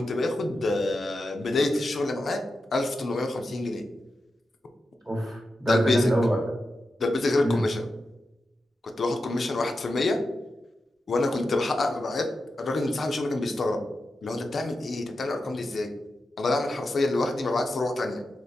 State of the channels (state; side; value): normal; both; correlation 0.90